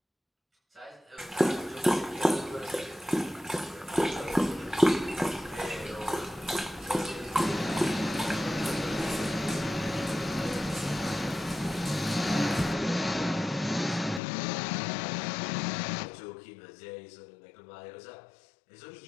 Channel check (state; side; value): drops out; right; at 14.2 s